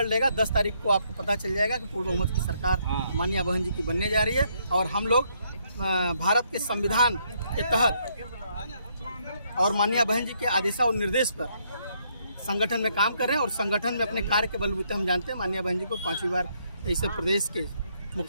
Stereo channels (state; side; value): inverted; both; correlation -0.72